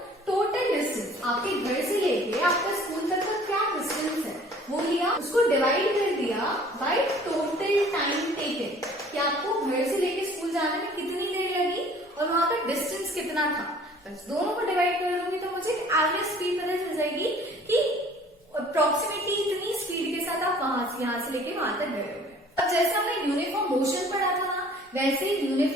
टोटल डिस्टेंस आपके घर से लेके आपका स्कूल तक का क्या डिस्टेंस है वो लिया, उसको डिवाइड कर दिया बाय टोटल टाइम टेकन, कि आपको घर से लेके स्कूल जाने में कितनी देर लगी और वहां का डिस्टेंस कितना था, बस दोनों को डिवाइड कर दूंगी तो मुझे एवरेज स्पीड पता चल जाएगी कि अप्रोक्सीमेटली इतनी स्पीड के साथ आप यहाँ से लेके वहां तक गए होंगे। अब जैसे हमने यूनिफॉर्म मोशन पढ़ा था ना, वैसे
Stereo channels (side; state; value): both; normal; correlation 0.52